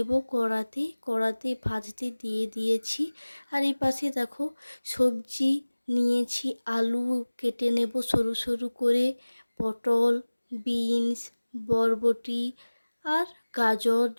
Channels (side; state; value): both; inverted; correlation -1.00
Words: কড়াতে ভাজতে দিয়ে দিয়েছি। আর এই পাশে দেখো সবজি নিয়েছি, আলু কেটে নেব সরু সরু করে, পটল, বিনস, বরবটি আর গাজর